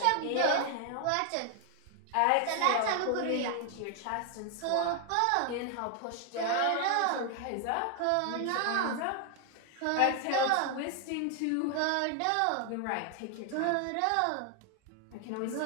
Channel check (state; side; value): different; both; correlation 0.00